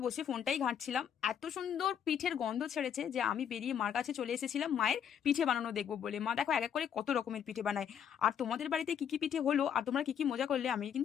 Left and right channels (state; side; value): quieter; right; 8.5 dB